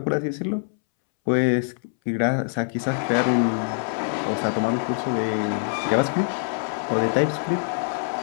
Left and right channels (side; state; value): right; silent; 62 dB below the other